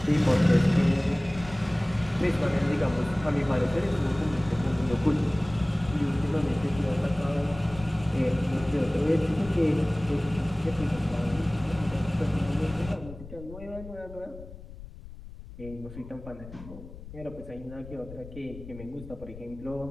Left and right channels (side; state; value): left; noise; rumble, 15 dB below the sound